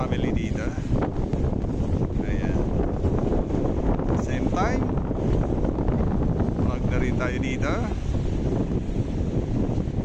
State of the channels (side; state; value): both; identical; correlation 1.00